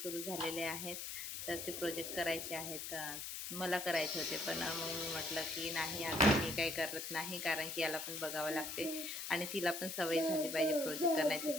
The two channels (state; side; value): noise; left; hiss, 6 dB below the sound